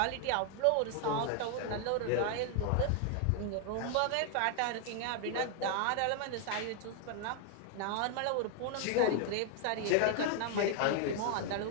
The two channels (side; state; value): both; different; correlation 0.01